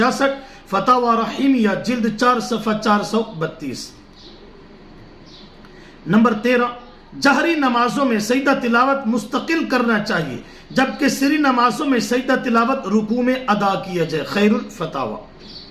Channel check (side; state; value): both; identical; correlation 1.00